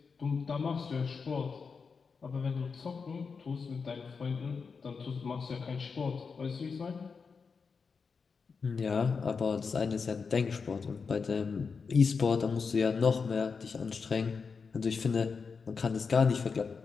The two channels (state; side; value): quieter; right; 5.3 dB